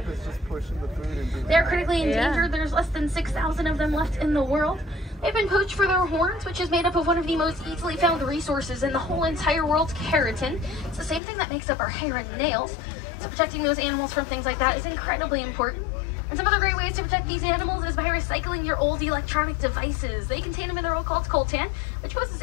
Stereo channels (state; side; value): drops out; right; at 11.2 s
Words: They're critically endangered. There's less than 6,000 of them left in the world. They've been poached for their horns, which is made up of one of the most easily found resources in the whole entire world, keratin. It's the same thing that makes up our hair and nails. So protecting those animals from things like that is incredibly important. And some other great ways to protect these animals is by recycling your old electronic devices. They contain a mineral called coltan, which poses